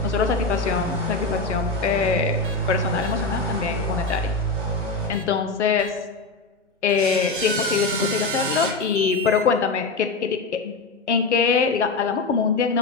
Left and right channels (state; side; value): quieter; right; 3.7 dB